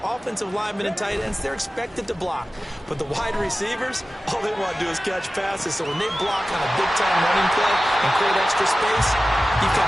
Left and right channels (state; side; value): normal; both; correlation 0.96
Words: Offensive linemen and tight ends, they're expected to block. But the wide receivers, all they want to do is catch passes. So when they block on a big-time running play and create extra space, you've